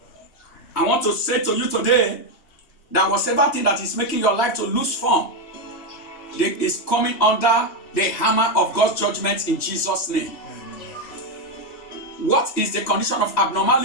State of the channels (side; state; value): right; late; 3.1 ms